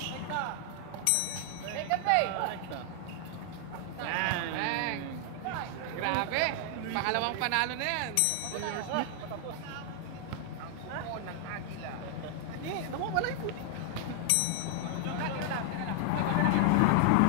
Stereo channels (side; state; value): both; different; correlation 0.00